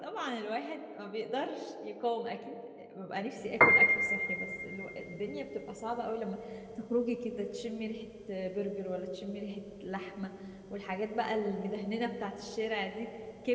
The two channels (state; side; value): identical; both; correlation 1.00